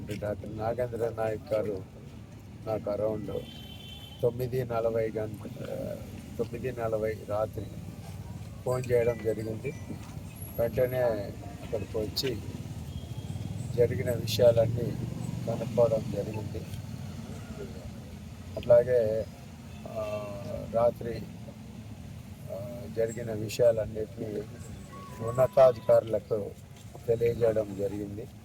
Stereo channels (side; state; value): both; identical; correlation 1.00